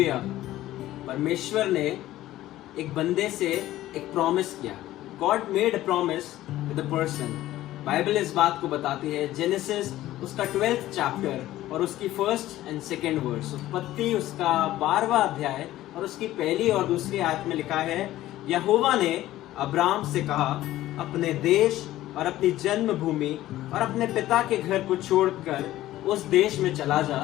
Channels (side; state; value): right; quieter; 14.9 dB